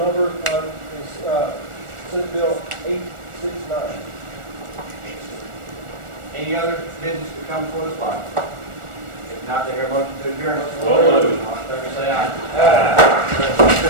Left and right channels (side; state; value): left; late; 1.4 ms